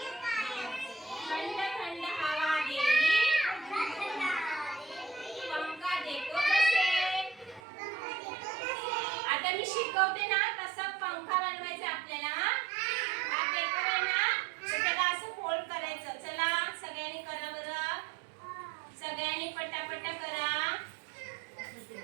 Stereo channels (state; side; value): drops out; left; at 7.6 s